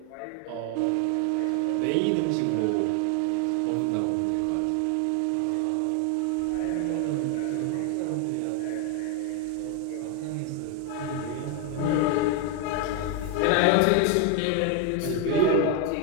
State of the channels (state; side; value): different; both; correlation 0.01